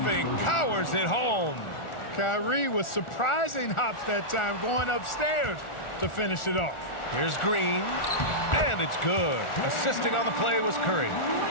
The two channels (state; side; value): late; right; 1.4 ms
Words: powers it home. Kyrie with surprising hops that time, going upstairs to finish it off. Here's Green, and it's good. Assisting on the play was Curry.